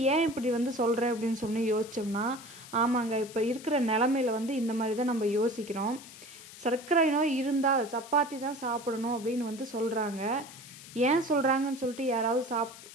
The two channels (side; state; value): left; noise; hiss, 17 dB below the sound